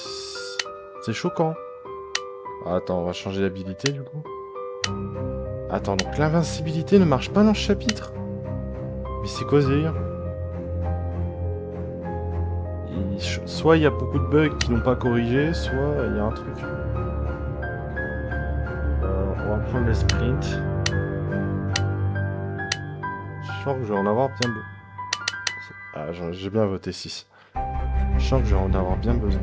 C'est choquant. Attends, on va changer d'habilité du coup. Attends, donc l'invincibilité ne marche pas dans ce chapitre? Mais c'est quoi ce délire? Soit il y a beaucoup de bugs qui n'ont pas corrigé, soit il y a un truc. On va prendre le sprint. Je sens que je vais en avoir bien besoin. Ah, j'ai bien voté 6. Je sens que je vais en avoir bien besoin.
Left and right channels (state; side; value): identical; both; correlation 1.00